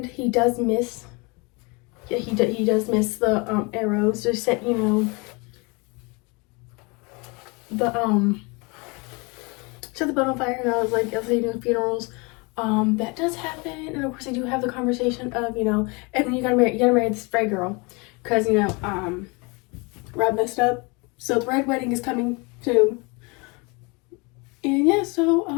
he does miss. Yeah, he does miss the arrows. Just set, you know, set the boat on fire, and I was like, I'll say doing funerals. That does happen, and of course they do have the conversation of, you know, Edmund, you gotta marry this Frey girl, cause you know, Rob messed up, so the Red Wedding is coming soon. And yeah,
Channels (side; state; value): right; quieter; 29.0 dB